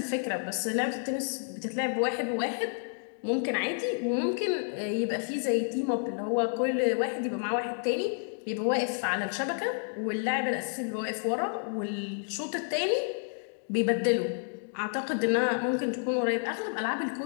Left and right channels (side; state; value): right; silent; 58 dB below the other